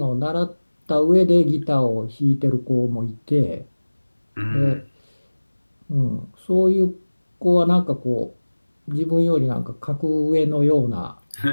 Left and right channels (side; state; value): both; inverted; correlation -1.00